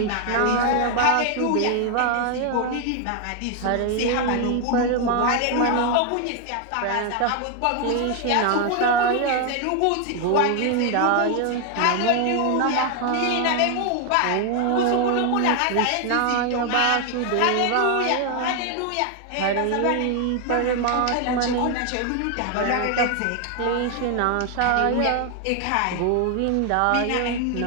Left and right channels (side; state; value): both; different; correlation 0.01